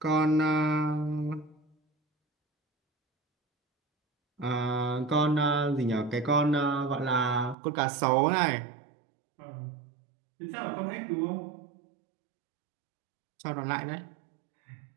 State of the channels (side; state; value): left; drops out; at 7.6 s